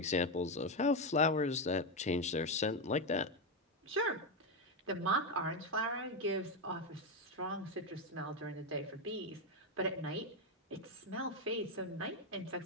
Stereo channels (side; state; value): both; normal; correlation 0.08